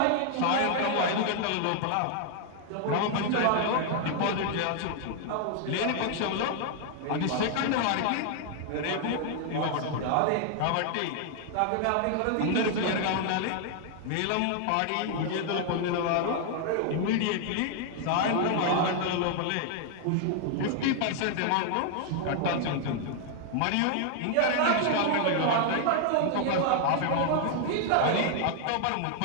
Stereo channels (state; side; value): different; both; correlation 0.00